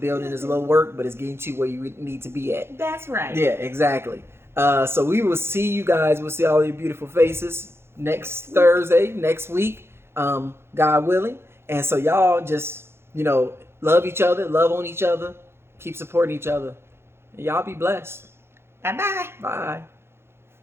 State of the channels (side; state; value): left; late; 0.12 ms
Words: is a little work, but it's getting to where you need to be at. That's right. Yeah, exactly. So we will see you guys. We'll see all your beautiful faces next Thursday, next week, God willing. And so y'all just, love each other, love on each other, keep supporting each other. And y'all be blessed. Bye-bye. Bye.